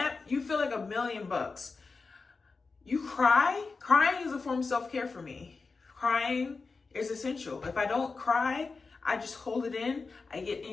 you feel like $1,000,000. You cry. Crying is a form of self-care for me. Crying is essential. If I don't cry, I just hold it in, I get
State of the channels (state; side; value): quieter; right; 4.3 dB